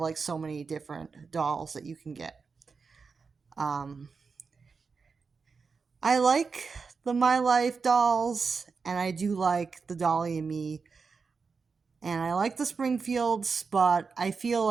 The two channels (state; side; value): quieter; left; 5.0 dB